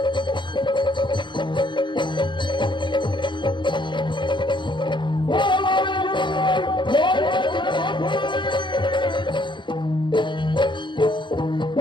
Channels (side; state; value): right; late; 0.23 ms